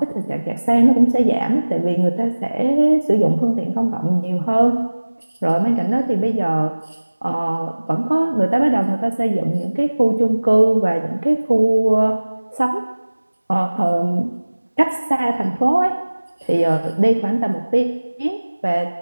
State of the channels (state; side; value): inverted; both; correlation -1.00